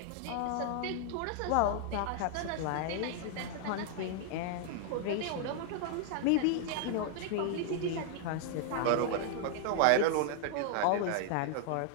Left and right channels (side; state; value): both; different; correlation 0.00